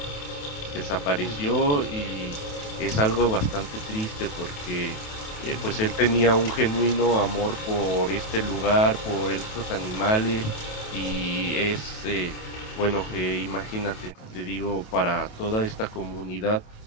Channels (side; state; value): right; late; 28 ms